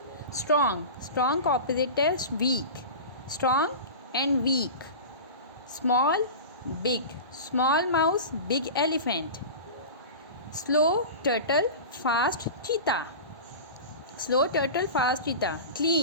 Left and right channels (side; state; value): both; inverted; correlation -0.30